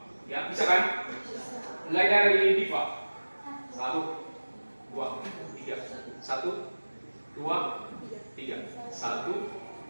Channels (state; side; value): inverted; both; correlation -1.00